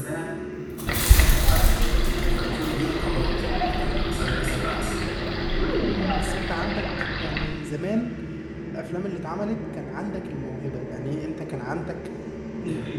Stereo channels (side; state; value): both; identical; correlation 1.00